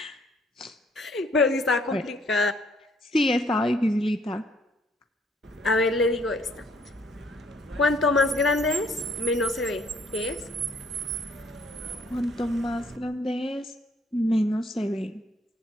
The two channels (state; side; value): normal; both; correlation 0.64